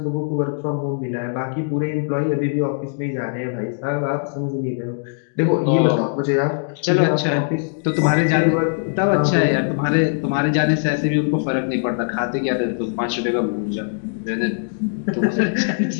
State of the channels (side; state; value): right; silent; digital silence